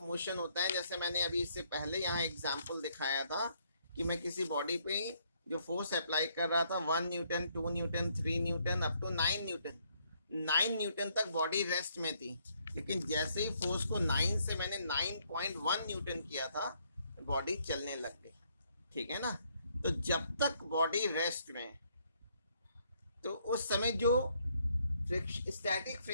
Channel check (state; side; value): inverted; both; correlation -0.70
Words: motion होता है। जैसे मैंने अभी इससे पहले यहाँ एग्जांपल दिखाया था कि मैं किसी बॉडी पे जो फोर्स अप्लाई कर रहा था, 1 newton, 2 newton, 3 newton, up to 9 newton. 9 newton तक बॉडी रेस्ट में थी, लेकिन जैसे ही फोर्स को 9 से मैंने 9.1 न्यूटन किया था, बॉडी चलने लग गई, ठीक है ना। तो जब तक बॉडी रेस्ट में, तो उस समय जो स्टैटिक